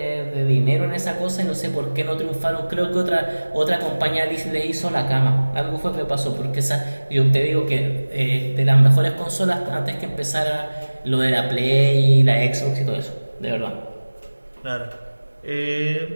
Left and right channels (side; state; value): both; inverted; correlation -1.00